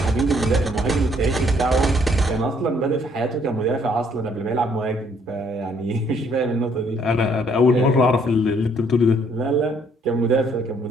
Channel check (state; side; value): normal; both; correlation 0.65